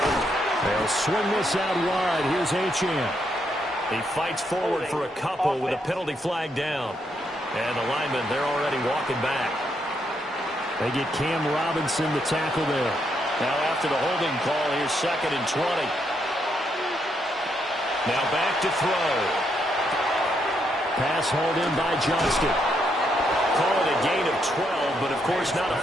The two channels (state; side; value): normal; both; correlation 0.77